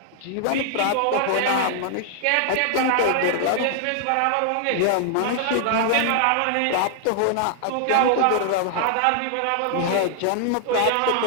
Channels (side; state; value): both; different; correlation 0.00